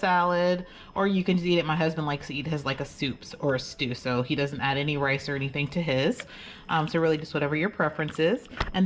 or you can just eat it. My husband likes to eat his like a soup or a stew, so he doesn't add any rice or anything to his. So really just whatever your preference is. And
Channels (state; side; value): identical; both; correlation 1.00